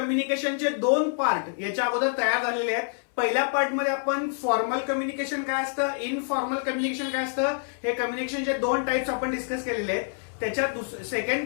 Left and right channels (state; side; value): silent; right; 60 dB below the other